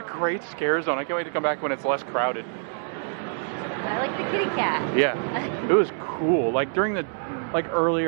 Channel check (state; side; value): silent; left; 61 dB below the other